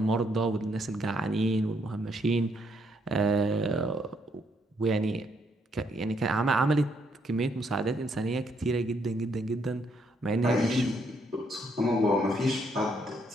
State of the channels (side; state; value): both; normal; correlation 0.73